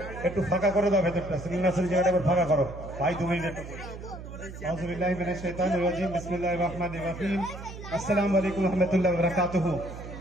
একটু ফাঁকা করে দাও ভেতরটা, সিলিন্ডার জায়গাটা একবার ফাঁকা করো ভাই, 2 মিনিট। আউযুবিল্লাহি মিনাশ শাইতানির রাজিম, বিসমিল্লাহির রহমানির রহিম। আসসালামু আলাইকুম ওয়া রাহমাতুল্লাহি ওয়া বারাকাতুহু।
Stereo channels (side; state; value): right; noise; hum, 12 dB below the sound